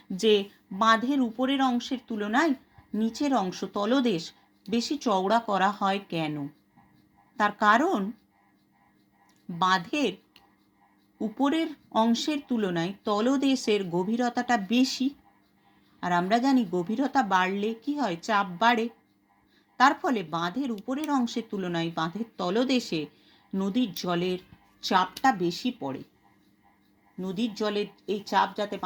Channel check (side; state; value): both; identical; correlation 1.00